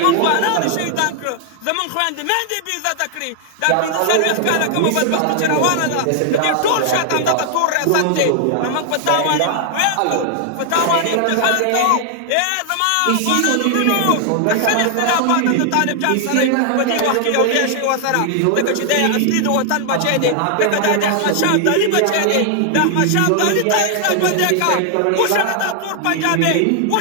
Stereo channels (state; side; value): different; both; correlation 0.00